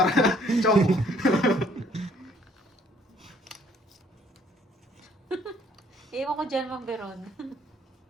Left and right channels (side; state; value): both; normal; correlation 0.63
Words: chong. Iwan ko dyan, Ma'am Beron.